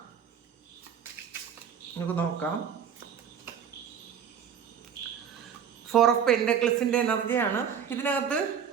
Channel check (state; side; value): quieter; left; 8.0 dB